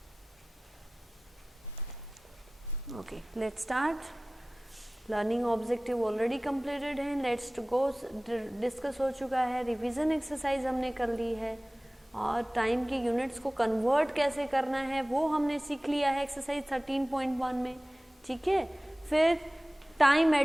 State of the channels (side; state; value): both; normal; correlation 0.98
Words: Okay, let's start. Learning objective already completed है. Let's go, discuss हो चुका है. Revision exercise हमने कर ली है और time की units को कन्वर्ट कैसे करना है वो हमने सीख लिया है एक्सरसाइज 13.1 में. ठीक है, फिर टाइम